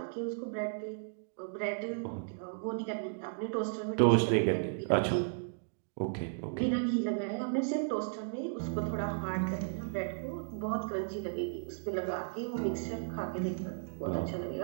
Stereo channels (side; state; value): left; silent; digital silence